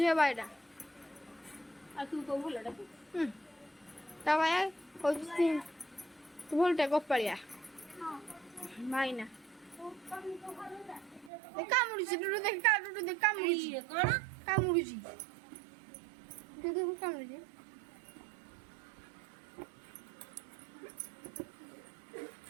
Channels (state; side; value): drops out; left; at 11.3 s